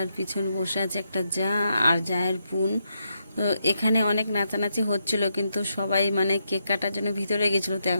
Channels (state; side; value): inverted; both; correlation -0.81